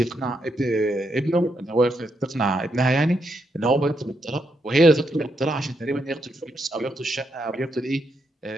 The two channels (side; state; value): both; normal; correlation 0.80